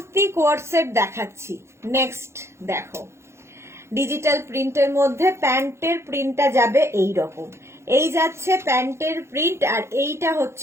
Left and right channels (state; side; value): late; left; 0.13 ms